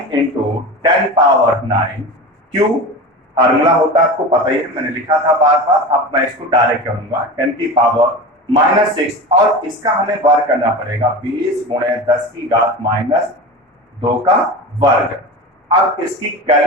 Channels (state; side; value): normal; both; correlation 0.29